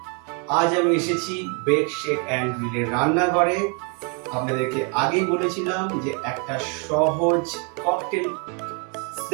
আজ আমি এসেছি বেক শেক অ্যান্ড গ্রিলের রান্নাঘরে। আপনাদেরকে আগেই বলেছিলাম যে একটা সহজ ককটেল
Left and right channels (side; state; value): left; quieter; 36.4 dB